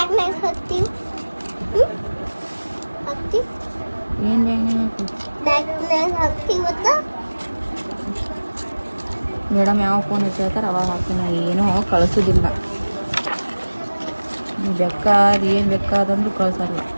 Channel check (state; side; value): inverted; both; correlation -1.00